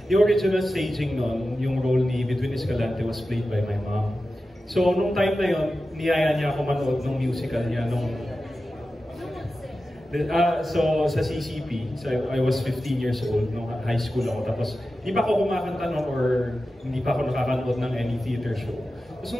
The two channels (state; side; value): normal; both; correlation 0.93